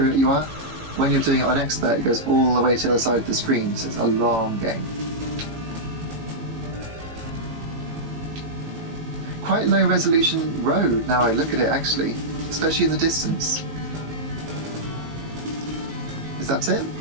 it you are. When you're doing it on Expert, it goes all the way to the side of the screen, so it's a long game. Quite low resolution road now I look at it, actually, especially in the distance. Is that it?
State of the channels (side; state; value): left; late; 19 ms